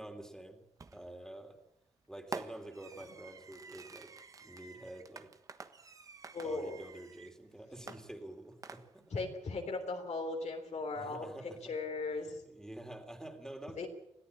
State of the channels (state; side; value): normal; both; correlation 0.59